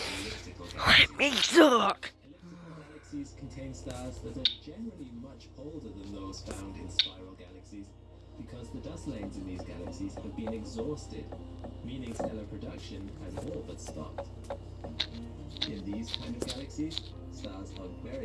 elliptical galaxies. Let me talk! Elliptical galaxies contain stars that are generally much older than those found in spiral galaxies, because the dust lanes in these galaxies have been exhausted, meaning stellar production has all but stopped. In these kind of galaxies, stars are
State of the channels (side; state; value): both; identical; correlation 1.00